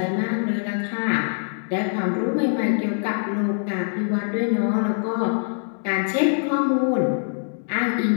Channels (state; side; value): silent; right; digital silence